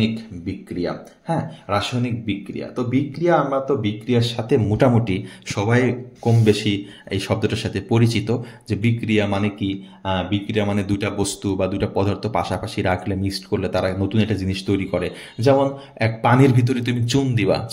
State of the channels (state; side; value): identical; both; correlation 1.00